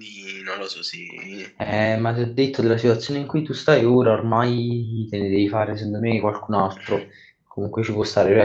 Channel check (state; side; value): identical; both; correlation 1.00